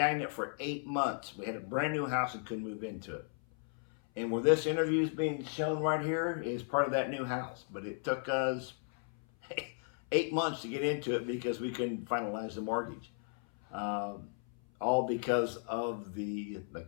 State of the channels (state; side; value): silent; right; 54 dB below the other